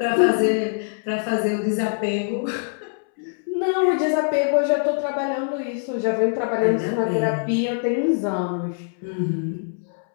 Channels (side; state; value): right; silent; 63 dB below the other